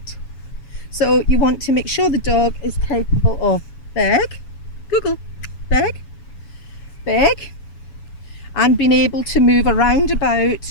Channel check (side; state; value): right; late; 7.1 ms